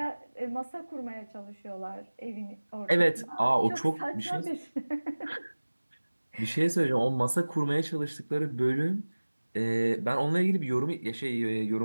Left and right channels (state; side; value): inverted; both; correlation -1.00